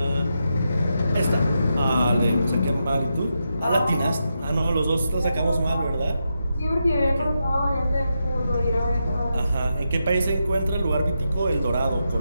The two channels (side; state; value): both; inverted; correlation -0.86